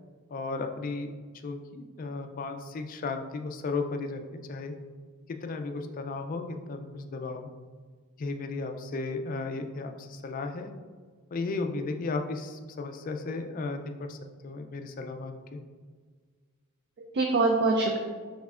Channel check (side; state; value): both; normal; correlation 0.33